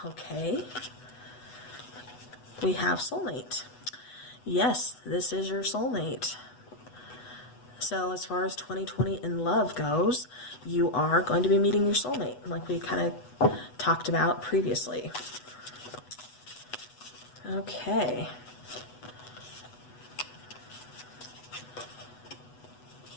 okay, we have soulmate. Yes, this is your soulmate. So as far as 2020 in love goes, you are going to be meeting your soulmate, like we kind of talked about previously. Okay.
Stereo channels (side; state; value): right; late; 8.1 ms